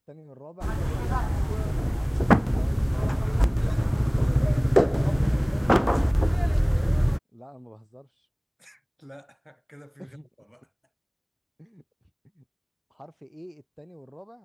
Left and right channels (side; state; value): both; identical; correlation 1.00